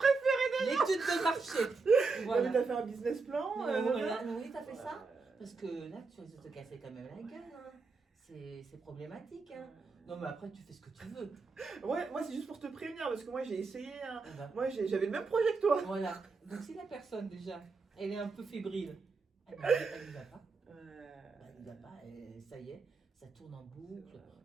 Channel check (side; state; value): left; quieter; 4.3 dB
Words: L'étude de marché! Ouais, Voilà. mais t'as fait un business plan. Voilà, oui, t'as fait ça? Ouais. Parce que là, tu vas te casser quand même la gueule. Hein. C'est problématique. Hein. Non, mais après, tu fais ce que tu veux. Ouais, moi c'est juste pour te prévenir parce que moi j'ai essayé. Hein. Eh ben, Moi j'avais le même projet que toi. voilà. Donc, si la personne, déjà, elle est un peu fébrile, elle n'y va pas. Elle n'y va pas, et ça y est, ça tourne en boucle.